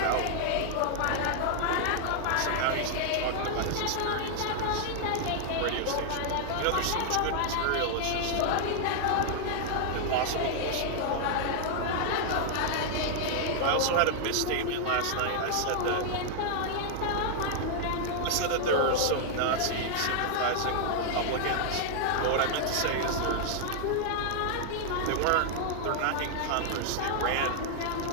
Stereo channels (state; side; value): different; both; correlation 0.00